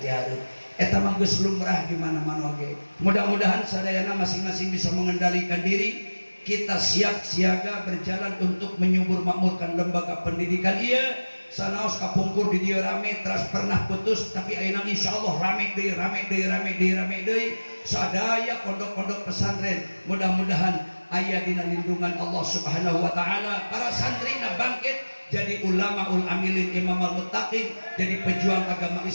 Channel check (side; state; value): both; inverted; correlation -1.00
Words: hareup. Eta mah geus lumrah di mana-mana oge. Mudah-mudahan sadayana masing-masing bisa mengendalikan diri. Kita siap siaga berjalan untuk menyubur makmurkan lembaga pendidikan ieu. Sanaos kapungkur di dieu rame teras pernah putus tapi ayeuna insyaallah rame deui, rame deui, rame deui, rame deui. Sadaya pondok-pondok pesantren mudah-mudahan aya dina lindungan Allah Subhanahu wa taala. Para santrina bangkit jadi ulamaul amilin, imamul muttaqin, jadi pejuang agama